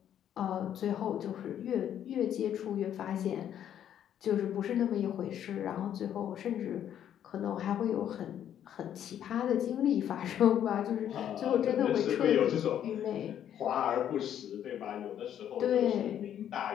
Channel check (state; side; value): quieter; right; 10.2 dB